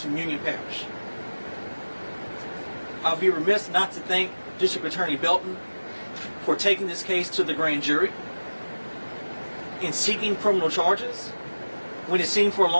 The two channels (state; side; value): inverted; both; correlation -1.00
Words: from Union Parish. I'll be remiss not to thank District Attorney Belton for taking this case to the grand jury and seeking criminal charges when it seemed for a